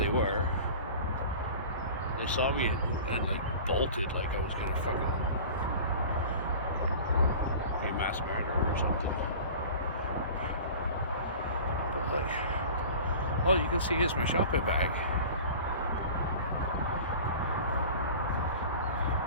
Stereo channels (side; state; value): both; inverted; correlation -0.39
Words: were. They saw me and like bolted like I was gonna fucking be a mass murderer or something. But like, all you can see is my shopping bag.